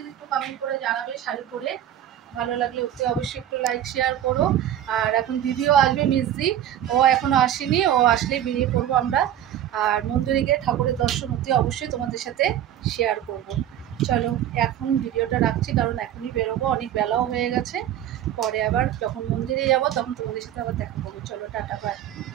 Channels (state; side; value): quieter; left; 11.2 dB